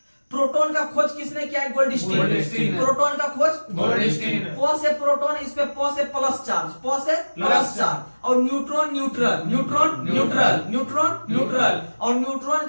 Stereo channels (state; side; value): inverted; both; correlation -1.00